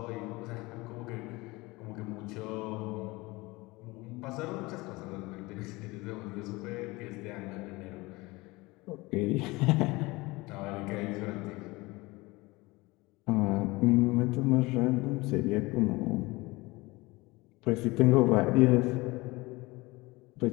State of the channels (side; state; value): right; quieter; 22.6 dB